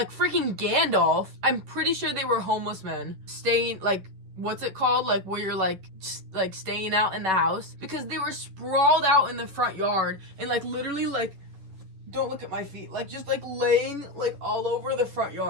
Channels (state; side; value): late; left; 11 ms